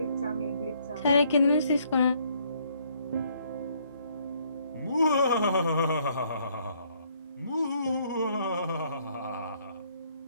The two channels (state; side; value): inverted; both; correlation -0.67